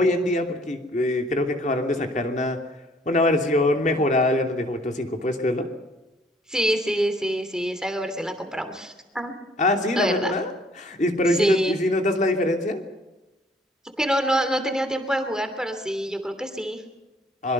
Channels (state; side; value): normal; both; correlation 0.60